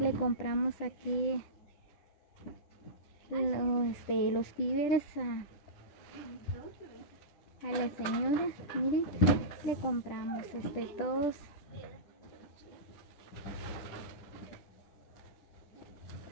compramos aquí los víveres a la señora. Miren, le compramos todos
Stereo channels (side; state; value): right; late; 10 ms